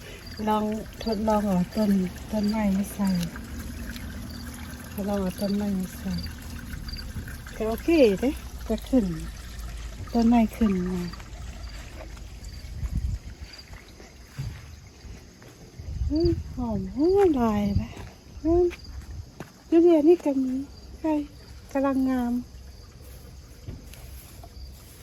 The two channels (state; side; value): identical; both; correlation 1.00